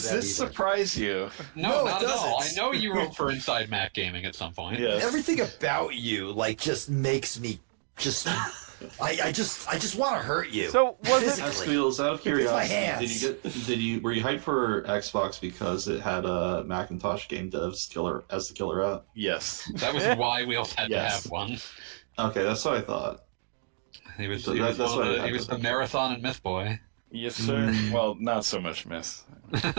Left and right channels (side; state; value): left; silent; digital silence